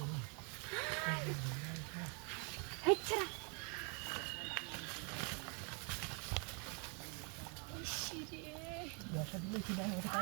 হেচ্ছারা ব্যবসা দিলে কি না ওটা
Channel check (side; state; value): left; quieter; 36.4 dB